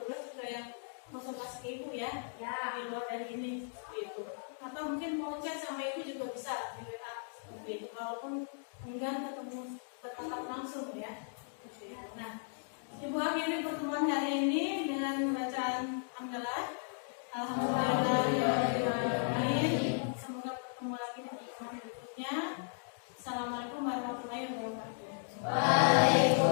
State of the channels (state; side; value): silent; right; digital silence